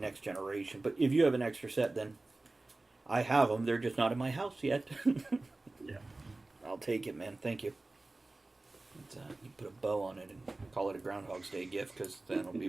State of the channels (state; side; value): quieter; left; 3.1 dB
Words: Generation. But if you have an extra set, then I have them. They're just not in my house yet. Yeah. I'll take it, man. Thank you. You put a bow on it and call it a Groundhog's Day gift, because that'll be